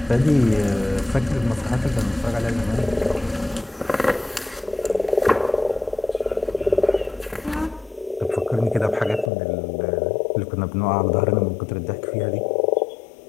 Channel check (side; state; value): right; drops out; at 9.3 s